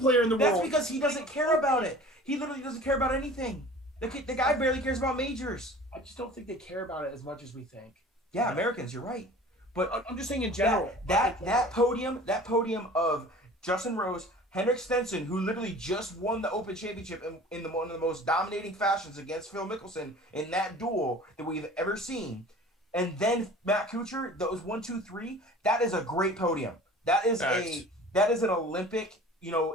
in the That's world. because he doesn't care about it. He literally doesn't care about anything. The guy barely cares about majors. I just don't think they care about it as much as we think. Yeah, Americans, you're right. But I'm just saying in general. that podium of Justin Rose, Henrik Stenson, who literally just won the Open Championship in one of the most dominating fashions against Phil Mickelson in that duel that we've ever seen, and then Matt Kuchar, those 1, 2, 3, that is a great podium. That is Facts. that is an Olympic,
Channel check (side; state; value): both; normal; correlation 0.43